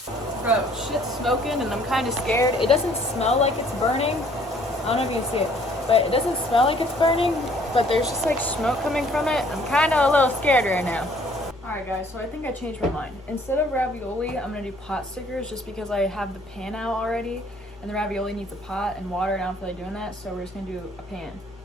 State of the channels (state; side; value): normal; both; correlation 0.60